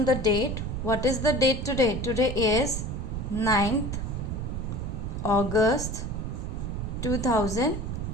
the date. What is the date today? Today is 9th August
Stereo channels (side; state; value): right; noise; rumble, 3 dB below the sound